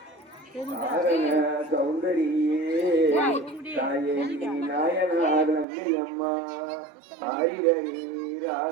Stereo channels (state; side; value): drops out; left; at 5.7 s